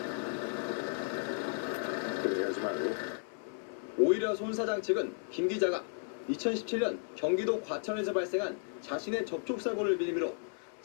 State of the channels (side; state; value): right; silent; 55 dB below the other